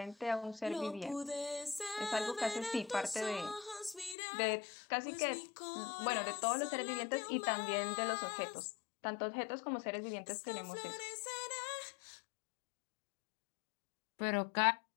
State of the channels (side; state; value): right; drops out; at 4.2 s